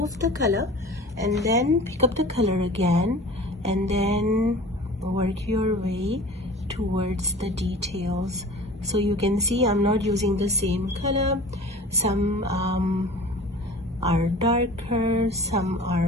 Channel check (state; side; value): normal; both; correlation 0.41